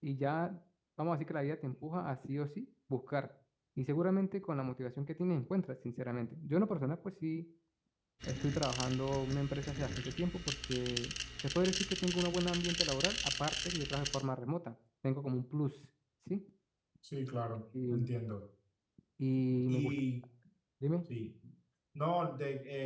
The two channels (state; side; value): identical; both; correlation 1.00